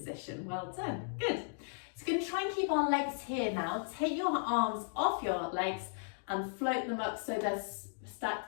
Well done, good. So we're going to try and keep our legs here now. Take your arms off your legs and float them up so they're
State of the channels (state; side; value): silent; right; digital silence